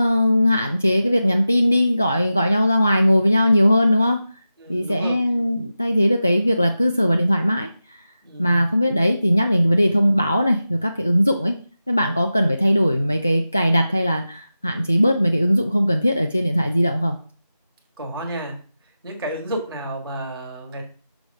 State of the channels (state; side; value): inverted; both; correlation -0.93